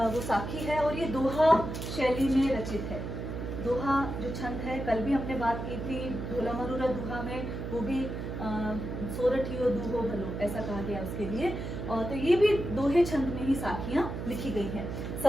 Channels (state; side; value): noise; right; hum, 6 dB below the sound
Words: वो साखी है, और ये दोहा शैली में रचित है। दोहा जो छंद है, कल भी हमने बात की थी, ढोला मरूरा दोहा में, वो भी सोरठियो दूहो भलो ऐसा कहा गया उसके लिए। और तो ये भी दोहे छंद में ही साखियां लिखी गई हैं।